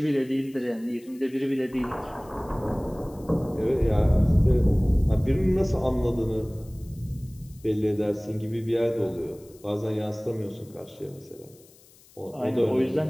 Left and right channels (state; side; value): noise; left; hiss, 26 dB below the sound